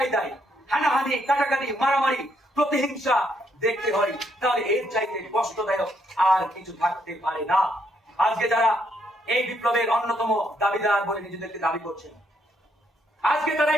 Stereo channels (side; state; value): both; normal; correlation 0.73